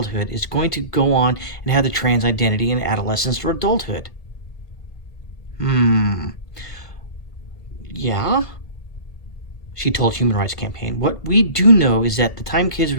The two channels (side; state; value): right; late; 1.5 ms